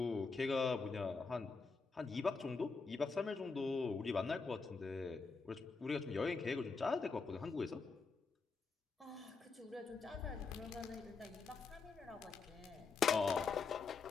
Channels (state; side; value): quieter; right; 4.6 dB